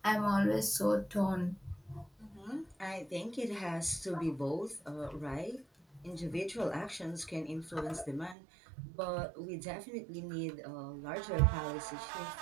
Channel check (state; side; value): drops out; left; at 8.3 s